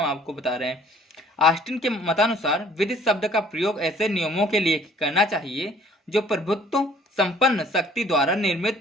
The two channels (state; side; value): normal; both; correlation 0.56